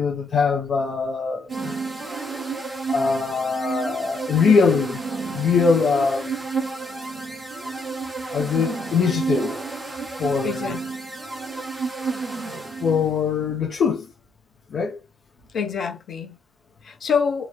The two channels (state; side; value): quieter; right; 3.6 dB